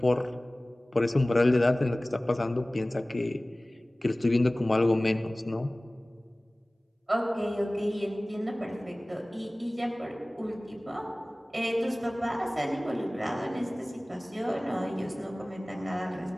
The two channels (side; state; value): both; normal; correlation 0.98